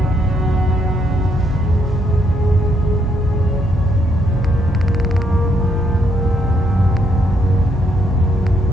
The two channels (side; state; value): both; normal; correlation 0.74